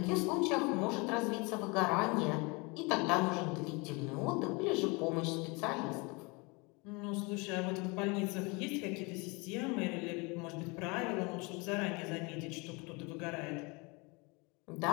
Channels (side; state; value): right; quieter; 28.2 dB